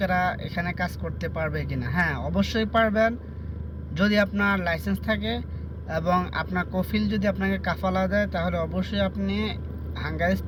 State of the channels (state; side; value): identical; both; correlation 1.00